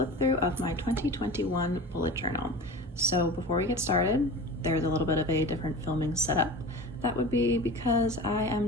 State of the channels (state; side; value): normal; both; correlation 0.34